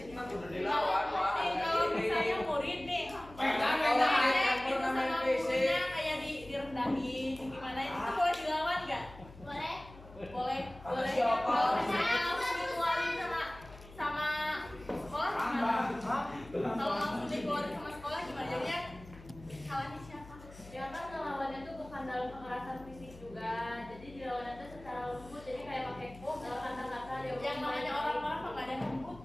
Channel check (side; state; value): left; noise; hum, 18 dB below the sound